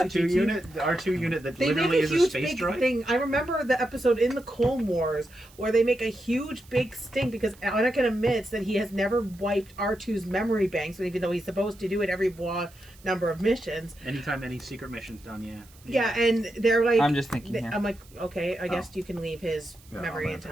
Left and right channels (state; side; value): noise; right; hiss, 26 dB below the sound